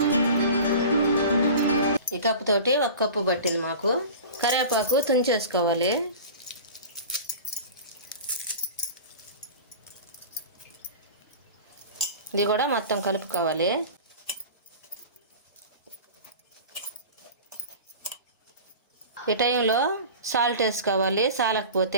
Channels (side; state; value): both; inverted; correlation -0.36